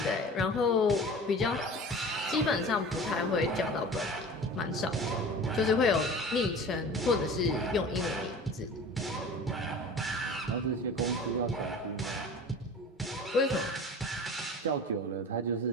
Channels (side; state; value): both; normal; correlation 0.39